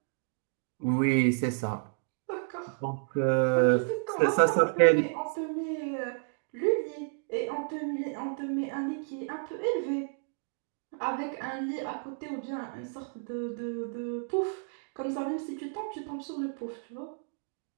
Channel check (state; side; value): silent; left; digital silence